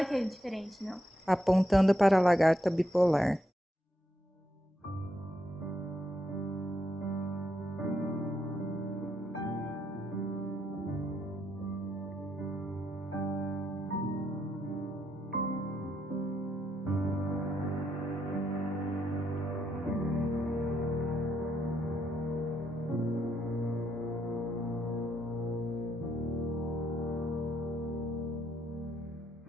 que é diferente, não. Apontando para a lagarta bipolar.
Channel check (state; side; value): normal; both; correlation 0.78